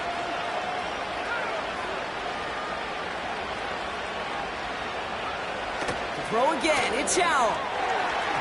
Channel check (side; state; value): both; identical; correlation 1.00